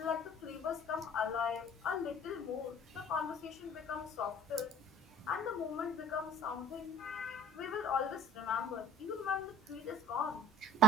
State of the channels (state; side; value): normal; both; correlation 0.48